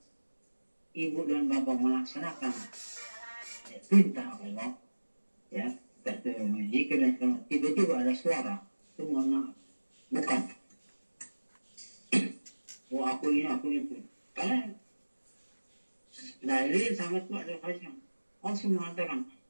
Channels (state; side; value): inverted; both; correlation -1.00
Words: Ibu dan Bapak melaksanakan perintah Allah, ya, jika tiba-tiba ada suara, itu mohon maaf, bukan. Oh aku ini, aku itu. Karena dalil sangat kuat dari Faisal. Allah mengatakan,